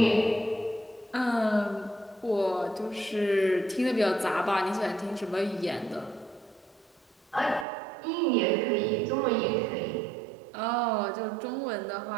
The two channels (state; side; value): drops out; left; at 7.7 s